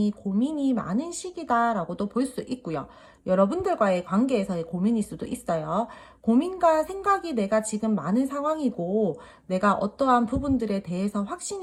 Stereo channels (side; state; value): both; identical; correlation 1.00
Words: 고민이 많은 시기다라고도 볼 수 있고요. 여러분들과의 관계에서의 고민일 수도 있어요. 고민과 생각이 내가 지금 많은 상황이고, 내가 어떠한 부분들에 대해서